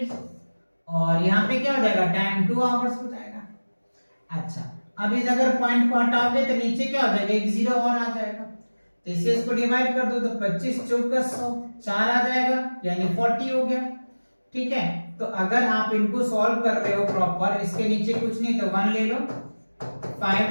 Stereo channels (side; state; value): both; inverted; correlation -1.00